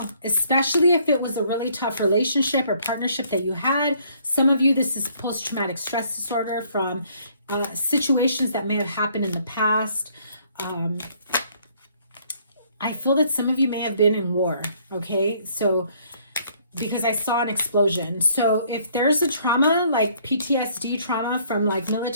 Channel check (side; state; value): both; inverted; correlation -0.64